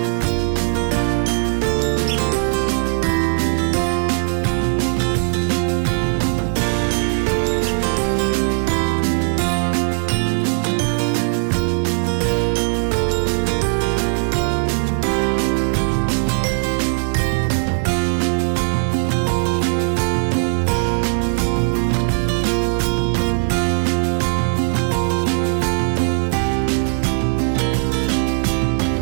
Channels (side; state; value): left; silent; 66 dB below the other